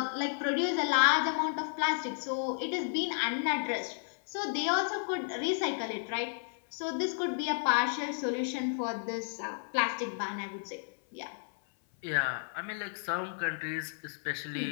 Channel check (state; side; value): silent; right; 56 dB below the other